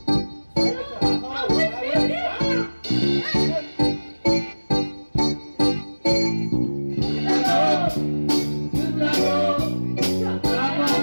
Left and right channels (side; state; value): both; inverted; correlation -1.00